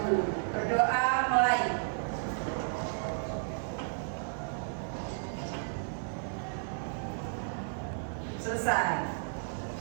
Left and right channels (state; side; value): silent; left; digital silence